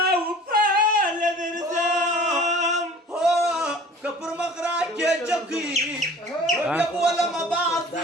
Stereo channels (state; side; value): normal; both; correlation 0.46